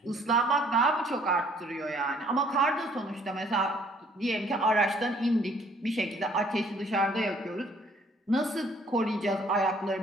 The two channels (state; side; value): normal; both; correlation 0.60